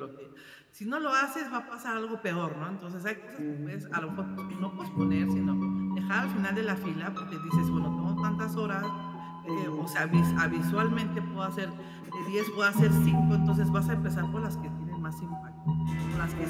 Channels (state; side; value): identical; both; correlation 1.00